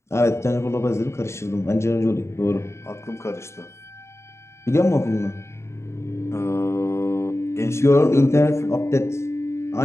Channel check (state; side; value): late; right; 0.13 ms